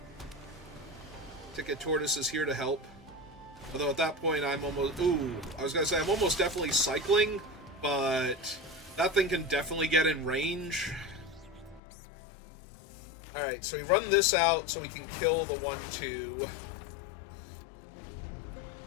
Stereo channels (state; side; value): drops out; right; at 11.8 s